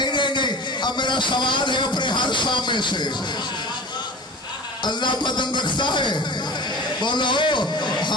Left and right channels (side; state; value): both; normal; correlation 0.36